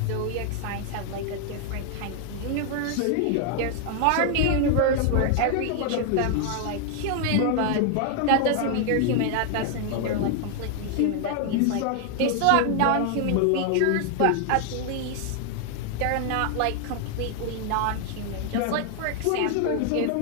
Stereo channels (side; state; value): both; different; correlation 0.00